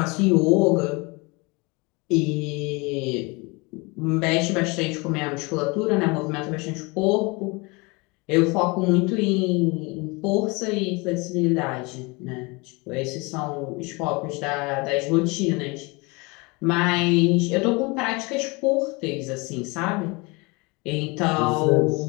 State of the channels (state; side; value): quieter; right; 27.1 dB